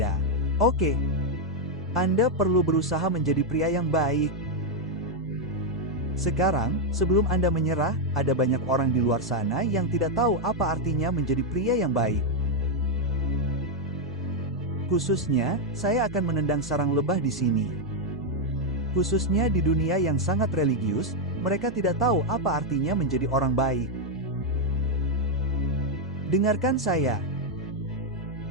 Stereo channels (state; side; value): normal; both; correlation 0.01